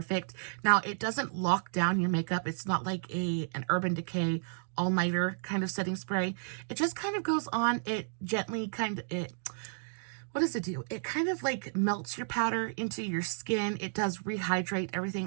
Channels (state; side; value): silent; left; digital silence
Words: Now, it doesn't lock down your makeup. It's not like an Urban Decay all-nighter kind of setting spray. It just kind of goes on. It gently what does it do? It kind of like melts your powder into your skin. It does rehydrate